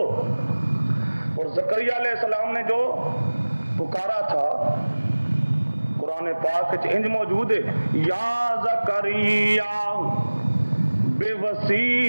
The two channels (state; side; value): inverted; both; correlation -1.00